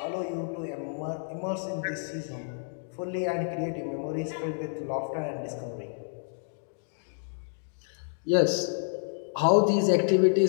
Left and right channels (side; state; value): right; silent; digital silence